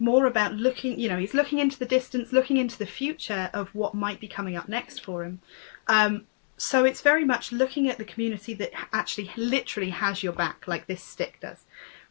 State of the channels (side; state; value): right; silent; digital silence